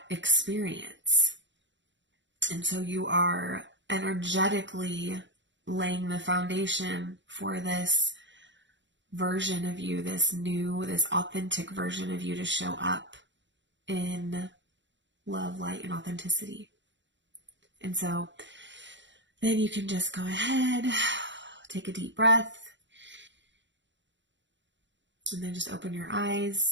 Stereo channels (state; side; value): late; left; 0.53 ms